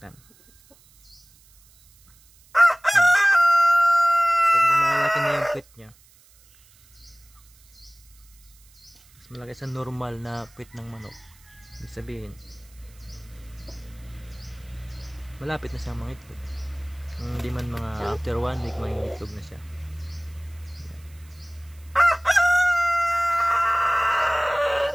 Pag malaki na yung puwit niya, mas malaki sa normal na puwit ng manok, ibig sabihin malapit na siyang mangitlog. Hindi man mga after 1 week mangitlog na siya.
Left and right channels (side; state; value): right; noise; hiss, 28 dB below the sound